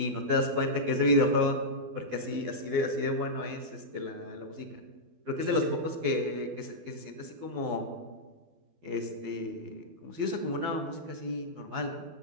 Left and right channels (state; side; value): late; left; 12 ms